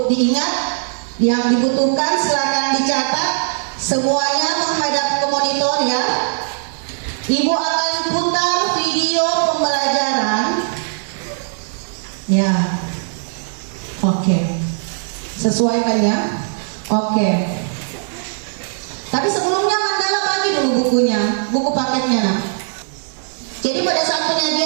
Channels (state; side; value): silent; left; digital silence